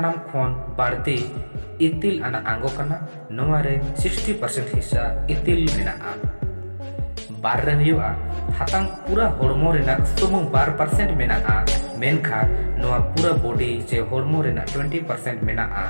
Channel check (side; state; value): both; inverted; correlation -1.00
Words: खोन बाड़ती इतिल आना आंगो कना नोवारे 60% हिस्सा इतिल मेनाआ बार रे हुआ हातांग पूरा हॉर्मो रेना सुमुंग 12% मेनाआ मेनखा नोवा पूरा बॉडी जे हॉर्मो रेना 20% मेनाआ